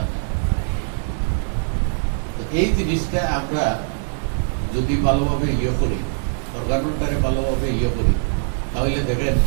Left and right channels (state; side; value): silent; left; 64 dB below the other